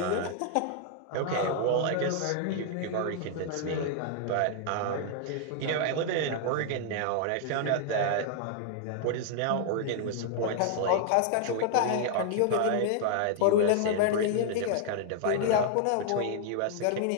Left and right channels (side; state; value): both; different; correlation 0.00